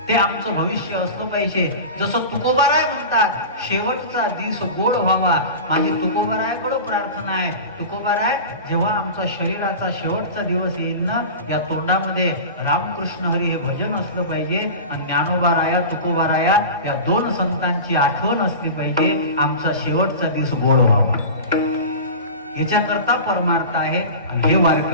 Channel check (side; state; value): both; inverted; correlation -0.31